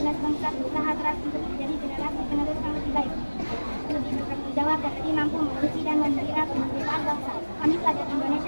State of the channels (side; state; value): both; inverted; correlation -1.00